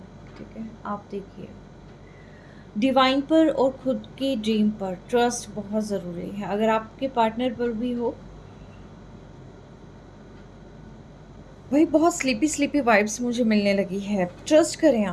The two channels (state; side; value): identical; both; correlation 1.00